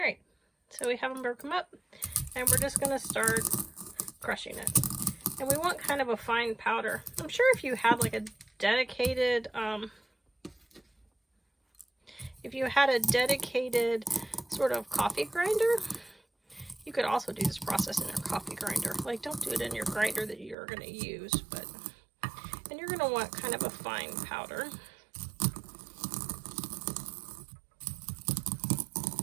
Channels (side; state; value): left; drops out; at 20.6 s